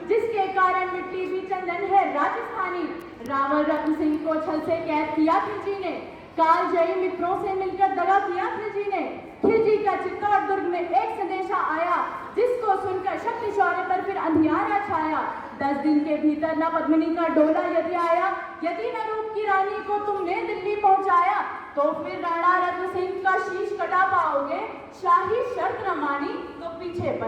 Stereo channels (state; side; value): identical; both; correlation 1.00